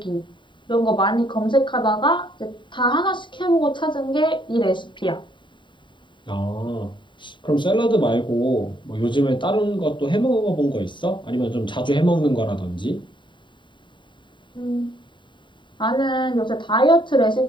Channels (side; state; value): right; late; 0.23 ms